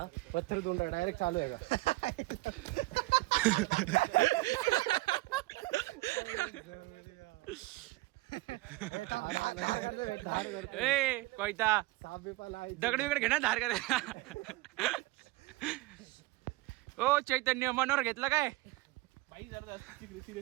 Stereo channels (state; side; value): quieter; left; 20.8 dB